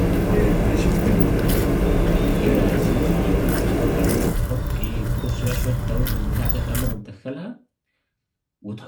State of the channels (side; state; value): both; identical; correlation 1.00